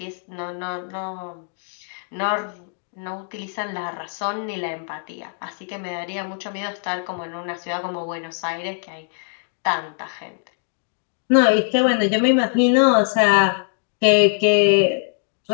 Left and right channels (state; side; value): silent; right; digital silence